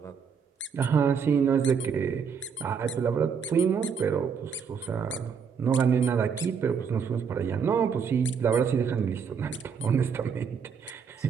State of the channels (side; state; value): left; quieter; 6.5 dB